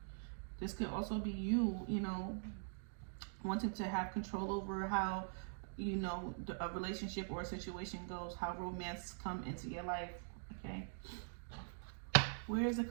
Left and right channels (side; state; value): left; silent; digital silence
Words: This could also be you, you know, wanting to have control over how, you know, a relationship or a situation goes, how romance come into your life, okay? Where is the